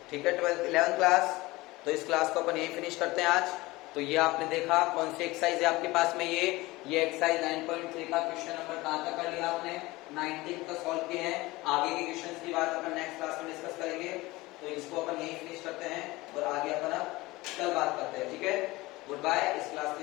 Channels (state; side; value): quieter; right; 20.7 dB